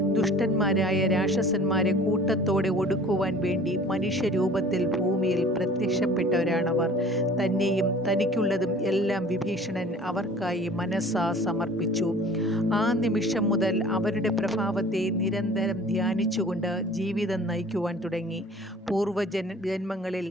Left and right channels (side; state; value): both; normal; correlation 0.47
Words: ദുഷ്ടന്മാരായ രാക്ഷസന്മാരെ കൂട്ടത്തോടെ ഒടുക്കുവാൻ വേണ്ടി മനുഷ്യരൂപത്തിൽ ഭൂമിയിൽ പ്രത്യക്ഷപ്പെട്ടവരാണവർ. തന്നെയും തനിക്കുള്ളതും എല്ലാം വിഭീഷണൻ അവർക്കായി മനസ്സാ സമർപ്പിച്ചു. ആ നിമിഷം മുതൽ അവരുടെ പ്രഭാവത്തെ നിരന്തരം ധ്യാനിച്ചുകൊണ്ട് ജീവിതം നയിക്കുവാൻ തുടങ്ങി. ജന്മങ്ങളിൽ